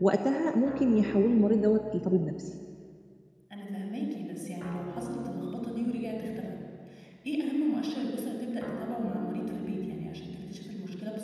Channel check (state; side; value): identical; both; correlation 1.00